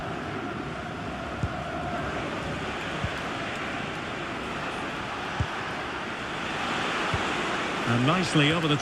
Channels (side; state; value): both; identical; correlation 1.00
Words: And nicely over the